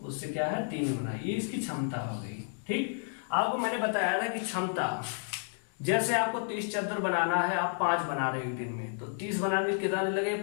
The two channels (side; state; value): right; silent; 57 dB below the other